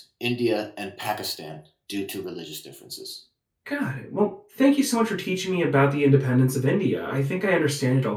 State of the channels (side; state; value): both; identical; correlation 1.00